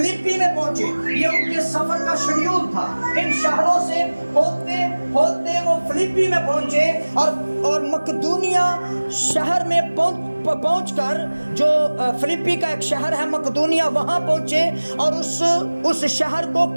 میں پہنچے. یہ ان کے سفر کا شیڈیول تھا. ان شہروں سے ہوتے ہوتے وہ فلپی میں پہنچے اور مقدونیہ شہر میں پہنچ کر, جو فلپی کا ایک شہر ہے مقدونیہ, وہاں پہنچے اور اس شہر کو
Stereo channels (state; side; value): inverted; both; correlation -1.00